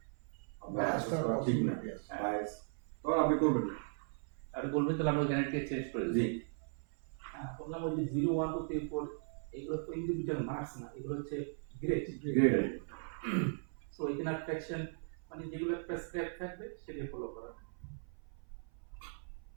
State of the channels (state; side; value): silent; left; 53 dB below the other